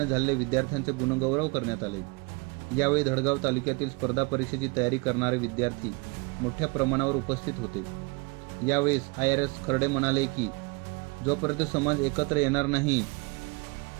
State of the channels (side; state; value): left; quieter; 28.6 dB